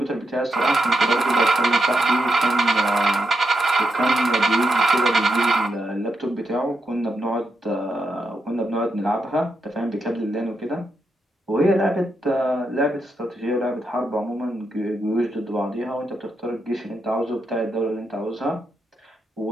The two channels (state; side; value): normal; both; correlation 0.83